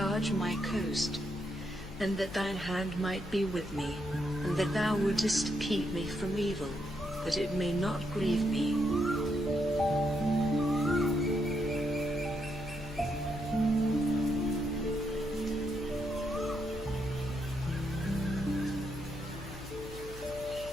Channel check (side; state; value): left; noise; hum, 14 dB below the sound